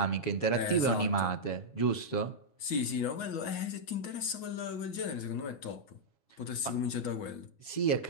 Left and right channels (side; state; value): right; late; 7.2 ms